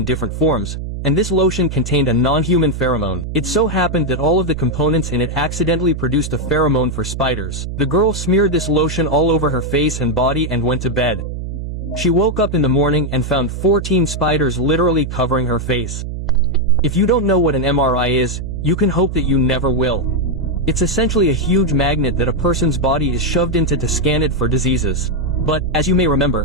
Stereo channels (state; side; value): noise; right; hum, 6 dB below the sound